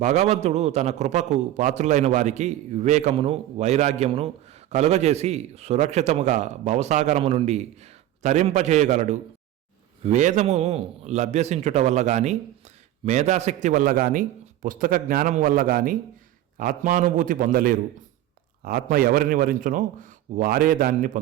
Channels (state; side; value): quieter; left; 13.5 dB